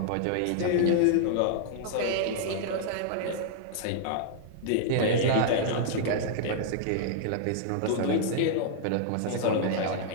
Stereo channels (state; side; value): different; both; correlation -0.01